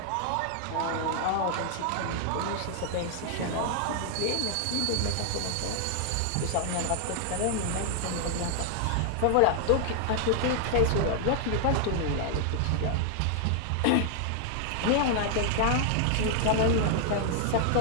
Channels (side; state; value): both; different; correlation 0.00